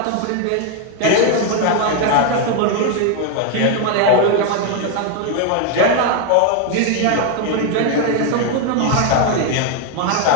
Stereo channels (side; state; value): both; different; correlation 0.01